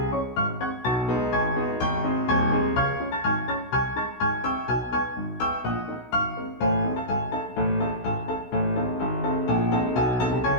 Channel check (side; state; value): right; late; 16 ms